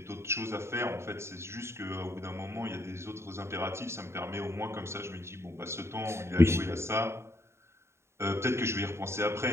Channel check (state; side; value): late; left; 0.13 ms